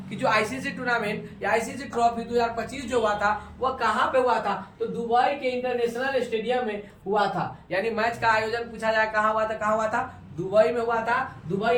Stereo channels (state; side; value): identical; both; correlation 1.00